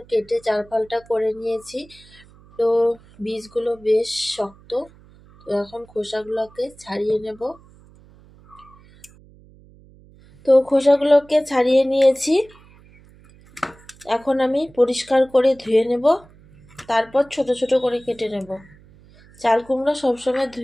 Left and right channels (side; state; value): right; noise; hum, 26 dB below the sound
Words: কেটে চার ফালটা করে নিয়েছি। তো বীজগুলো বেশ শক্ত, তো এখন খোসাগুলোকে ছাড়িয়ে নেব। তো খোসাগুলোকে ছাড়িয়ে নিয়েছি, এখন আমি পরিষ্কার করে ধুয়ে নেব, তারপর ছোট ছোট করে কেটে নেব। চাল কুমড়ো সবসময়